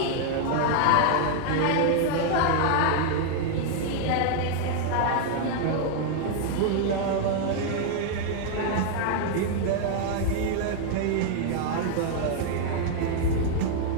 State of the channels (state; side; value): different; both; correlation 0.00